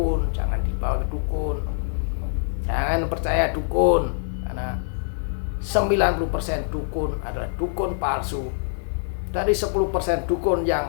jangan dibawa ke dukun. Jangan percaya dukun, karena 90% dukun adalah dukun palsu. Dari 10% dukun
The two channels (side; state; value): right; silent; 59 dB below the other